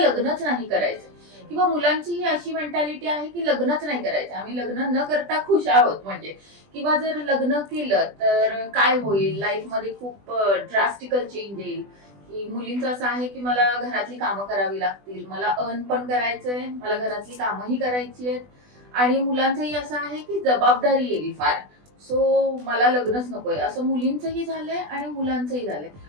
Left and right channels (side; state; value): left; late; 20 ms